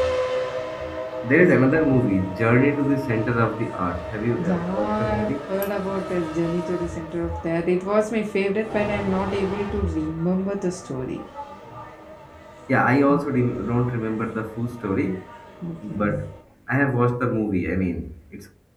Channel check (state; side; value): identical; both; correlation 1.00